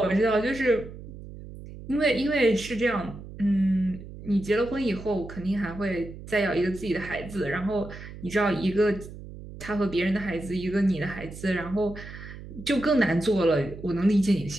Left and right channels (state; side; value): noise; right; hum, 14 dB below the sound